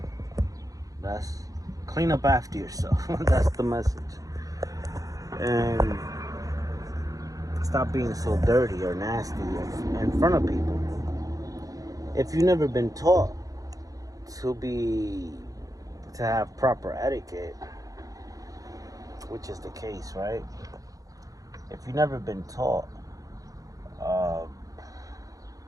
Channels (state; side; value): late; left; 0.17 ms